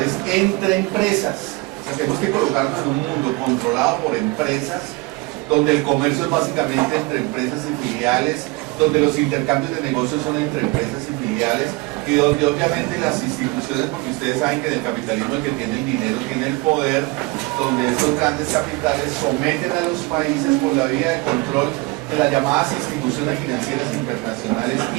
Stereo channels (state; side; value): quieter; left; 24.0 dB